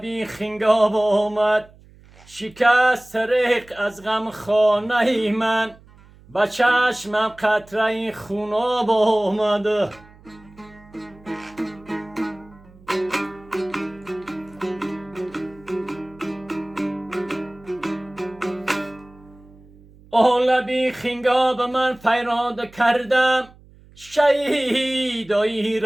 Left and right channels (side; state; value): right; noise; hum, 25 dB below the sound